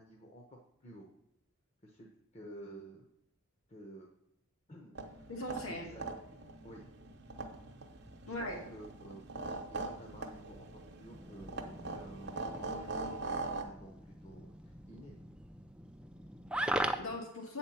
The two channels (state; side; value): normal; both; correlation 0.21